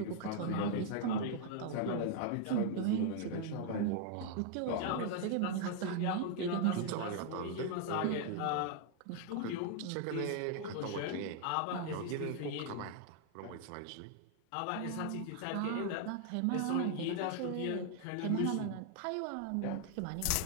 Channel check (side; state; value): both; different; correlation 0.00